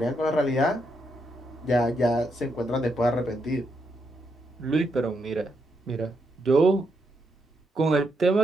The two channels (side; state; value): both; normal; correlation 0.80